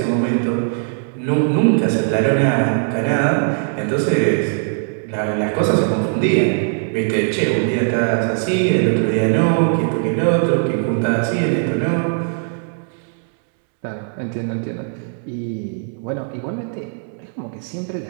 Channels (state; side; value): silent; left; 66 dB below the other